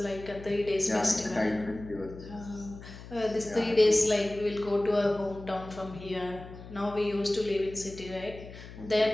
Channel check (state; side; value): noise; left; hum, 15 dB below the sound